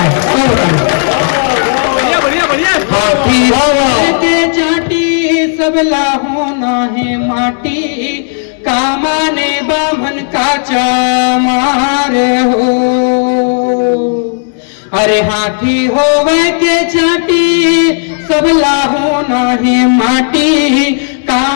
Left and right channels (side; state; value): right; silent; digital silence